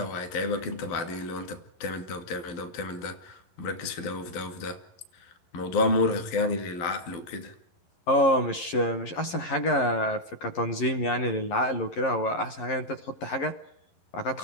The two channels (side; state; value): right; late; 11 ms